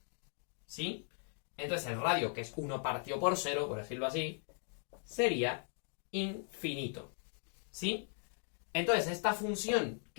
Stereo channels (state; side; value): silent; right; 52 dB below the other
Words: ¿Sí? Entonces el radio, que es 1 partido por 0, por decirlo así, sería infinito. ¿Sí? Entonces esta función